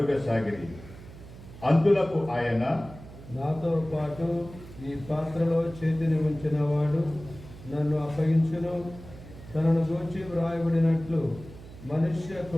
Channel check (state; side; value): noise; right; hum, 16 dB below the sound